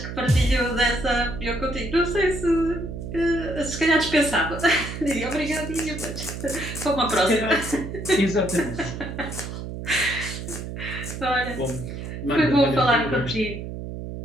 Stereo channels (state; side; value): noise; right; hum, 8 dB below the sound